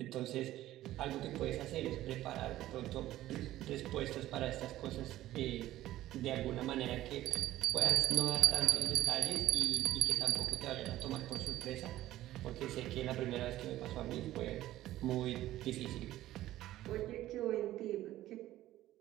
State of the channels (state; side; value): quieter; left; 14.7 dB